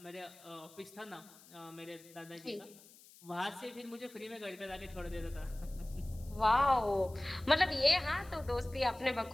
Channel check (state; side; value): noise; left; hiss, 22 dB below the sound